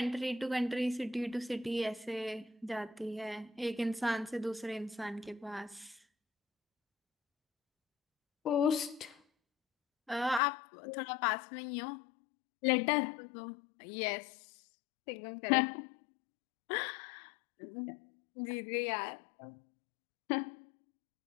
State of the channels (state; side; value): drops out; right; at 10.4 s